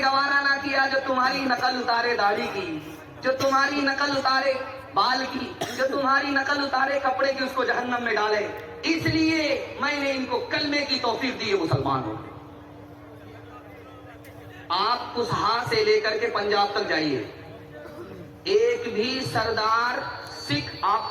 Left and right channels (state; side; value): identical; both; correlation 1.00